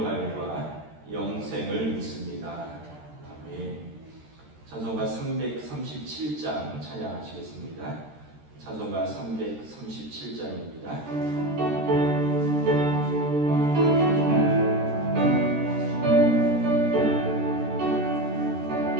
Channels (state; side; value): late; left; 13 ms